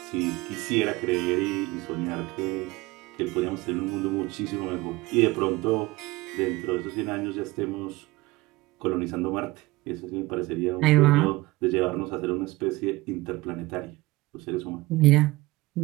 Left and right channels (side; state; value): left; quieter; 20.8 dB